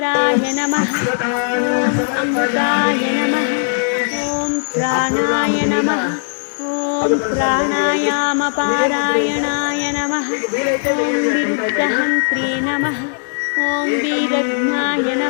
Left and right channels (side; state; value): right; silent; digital silence